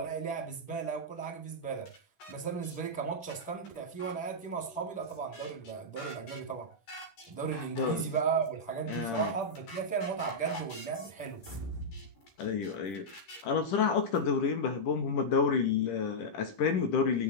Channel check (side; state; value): right; late; 10 ms